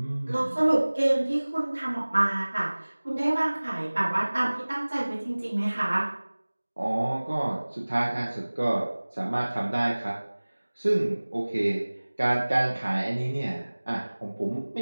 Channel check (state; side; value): inverted; both; correlation -1.00